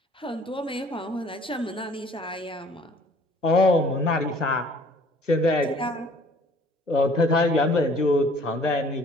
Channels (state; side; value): normal; both; correlation 0.55